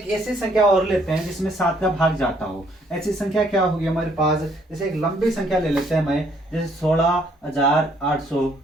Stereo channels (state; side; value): normal; both; correlation 0.66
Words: ऐसी संख्या और लेते हैं जिसमें 7 का भाग जाता हो। ऐसी संख्या क्या होगी हमारे पास, जैसे एक लंबी संख्या ले लेते हैं मैं, जैसे